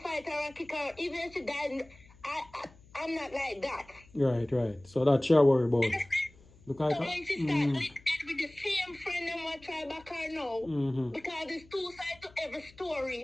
her and kick her. Even if she died, I'm not like that. Right. So that's your worry about. Because so when she started with the same friend and what try back her now, because there's two sides to every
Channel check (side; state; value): left; noise; hum, 25 dB below the sound